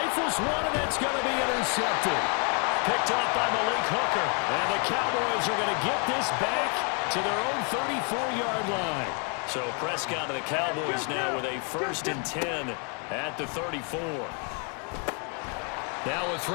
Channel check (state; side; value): quieter; right; 37.9 dB